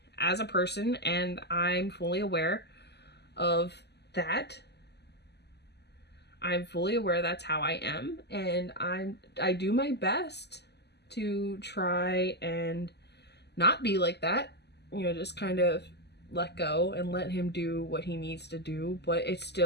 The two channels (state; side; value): late; right; 0.49 ms